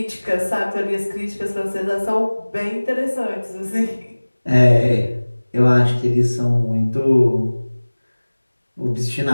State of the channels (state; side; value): inverted; both; correlation -1.00